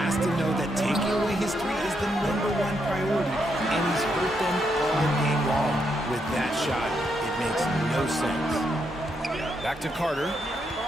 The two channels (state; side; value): normal; both; correlation 0.79